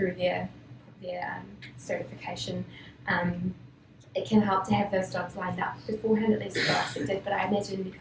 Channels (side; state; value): both; identical; correlation 1.00